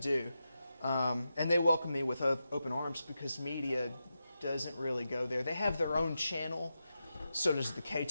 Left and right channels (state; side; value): inverted; both; correlation -0.89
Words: And they welcome me with open arms because media doesn't really go there. They have their own channel, so does the